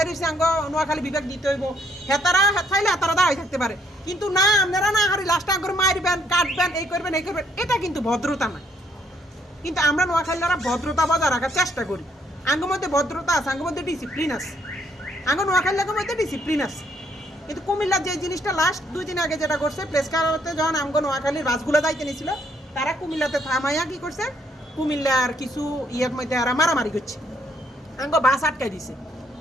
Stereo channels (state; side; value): normal; both; correlation 0.70